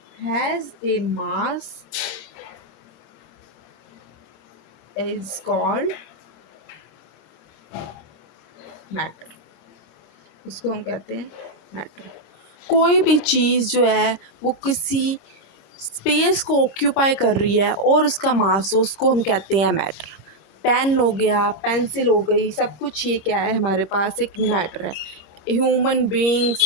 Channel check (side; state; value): right; late; 26 ms